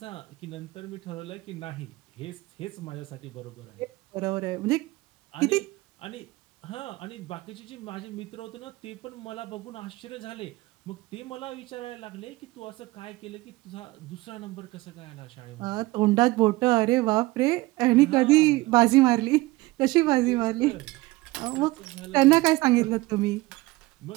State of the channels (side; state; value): left; quieter; 20.3 dB